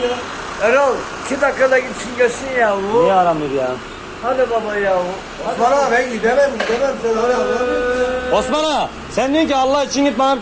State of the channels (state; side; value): identical; both; correlation 1.00